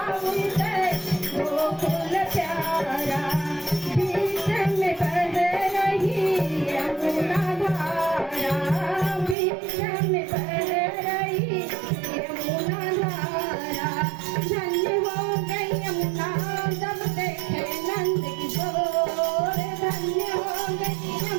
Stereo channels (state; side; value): drops out; left; at 9.3 s